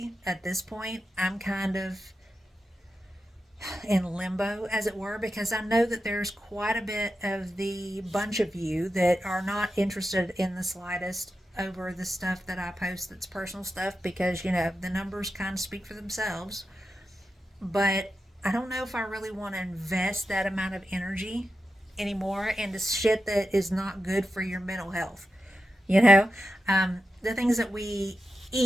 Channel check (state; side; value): normal; both; correlation 0.90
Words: at this point, I'm kind of in limbo, as it were, because I know that there's quite a bit of the bunch of you that are not interested in the slightest over the stuff that I post that's personal stuff, because, you know, the numbers kind of speak for themselves. But I don't know if I really want to invest that amount of energy anymore into shit that is not good for your mental health. You know, the things that we